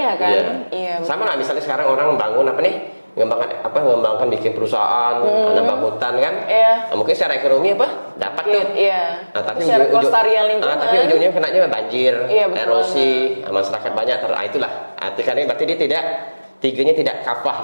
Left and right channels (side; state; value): both; inverted; correlation -1.00